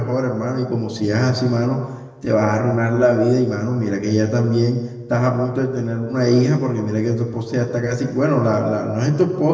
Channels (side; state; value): both; identical; correlation 1.00